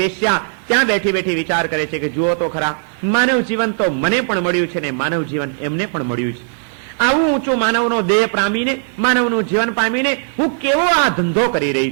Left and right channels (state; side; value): silent; left; digital silence